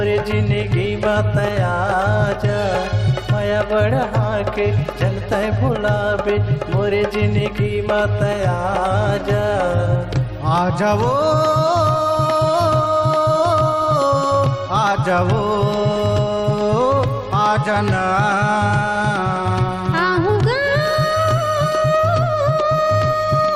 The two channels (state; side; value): identical; both; correlation 1.00